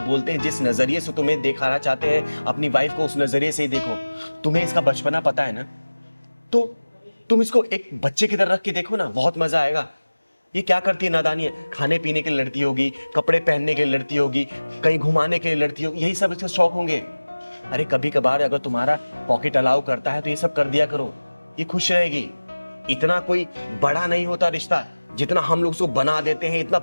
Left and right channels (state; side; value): inverted; both; correlation -1.00